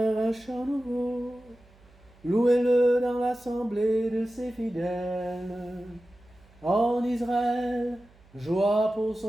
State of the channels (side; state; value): right; noise; hum, 28 dB below the sound